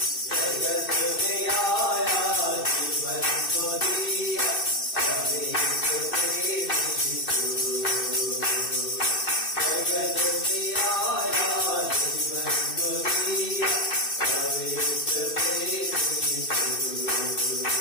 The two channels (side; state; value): right; late; 2.6 ms